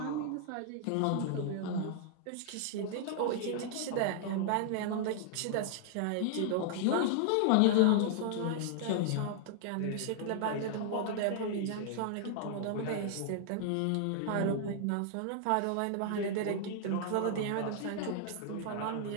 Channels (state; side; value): different; both; correlation -0.01